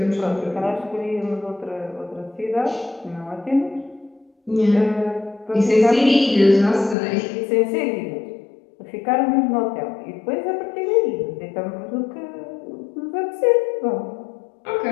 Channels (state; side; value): drops out; right; at 7.0 s